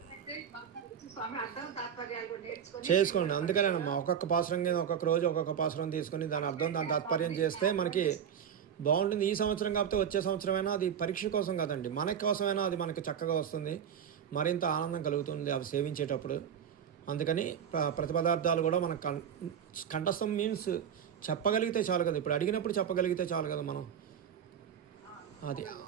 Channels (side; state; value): left; quieter; 8.4 dB